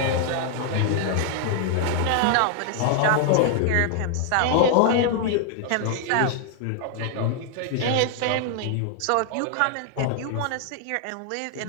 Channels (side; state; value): both; different; correlation 0.00